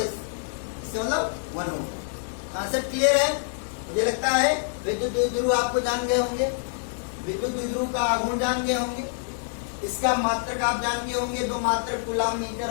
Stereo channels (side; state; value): right; silent; 61 dB below the other